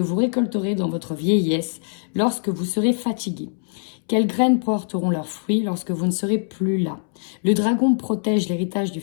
vous récolterez dans votre vieillesse lorsque vous serez fatigué? Quelles graines porteront leurs fruits lorsque vous ne serez plus là? Le dragon protège l'héritage du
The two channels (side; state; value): right; silent; 64 dB below the other